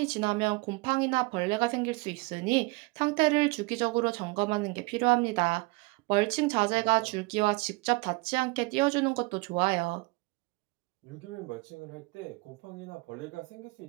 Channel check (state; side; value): quieter; left; 25.9 dB